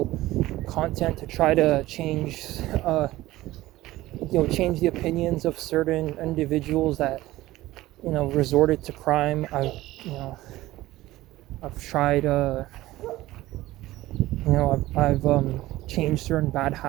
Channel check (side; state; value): left; quieter; 16.8 dB